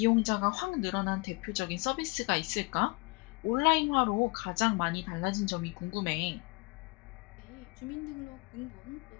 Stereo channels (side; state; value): right; quieter; 27.4 dB